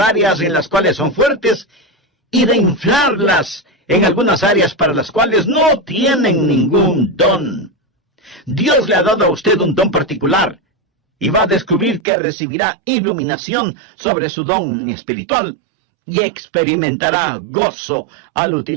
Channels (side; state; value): left; drops out; at 12.0 s